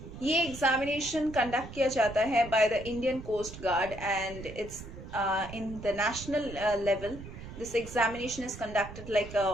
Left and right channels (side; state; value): right; noise; rumble, 13 dB below the sound